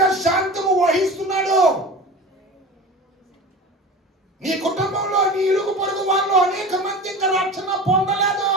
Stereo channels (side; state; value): both; normal; correlation 0.33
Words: శాంతము వహిస్తున్నాడు. నీ కుటుంబంలో నీ ఇరుగు పొరుగు వాళ్ళు అనేక మంది ఇంకా రక్షణ పొందలేదు.